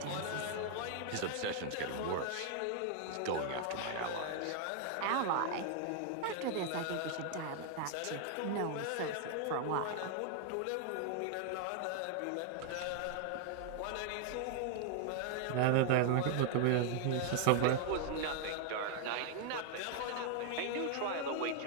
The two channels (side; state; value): both; different; correlation 0.00